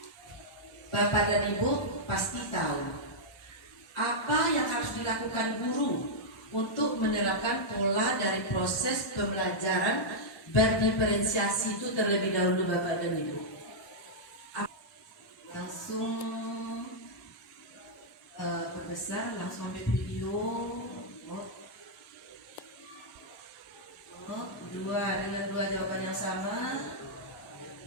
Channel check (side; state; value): both; normal; correlation -0.08